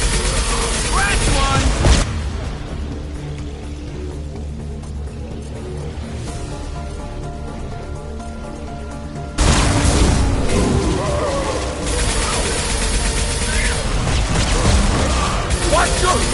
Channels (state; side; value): identical; both; correlation 1.00